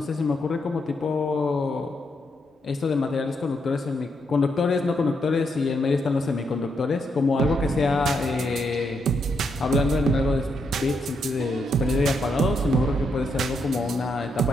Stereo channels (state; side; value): normal; both; correlation 0.79